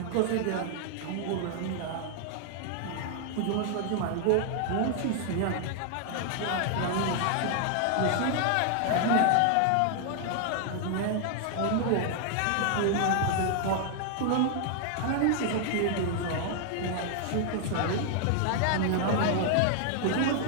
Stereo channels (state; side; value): different; both; correlation 0.00